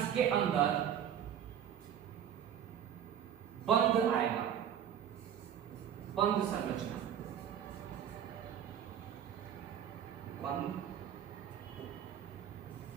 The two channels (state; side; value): quieter; left; 9.3 dB